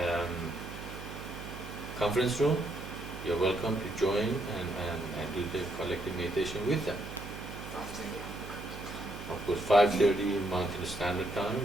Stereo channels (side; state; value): right; noise; hum, 11 dB below the sound